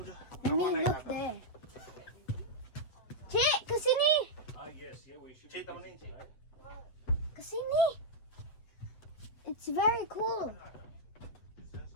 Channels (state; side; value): late; right; 8.2 ms